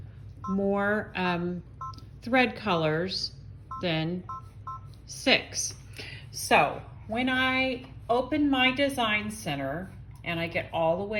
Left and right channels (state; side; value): identical; both; correlation 1.00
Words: more thread colors than 6. So when I open my design center and I get all the